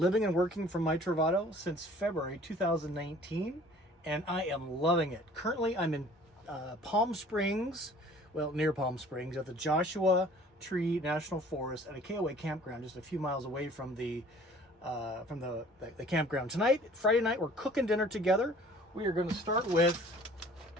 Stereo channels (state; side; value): normal; both; correlation 0.51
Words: and working from my Travato since February 2019, and I am loving it. Currently, I'm in Palm Springs, well, near Palm Springs, at the Joshua Tree National Forest at a KOA campground just a few miles away from the campground. Tonight, Friday night, we're cooking dinner together. We are going to start with